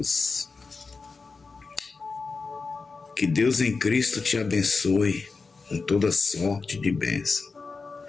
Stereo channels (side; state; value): right; quieter; 4.4 dB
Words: Que Deus em Cristo te abençoe com toda sorte de bênção.